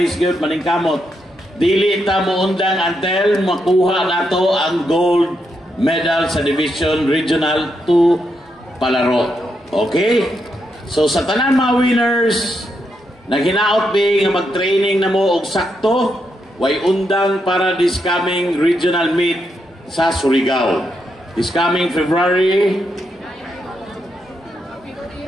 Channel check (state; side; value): normal; both; correlation 0.81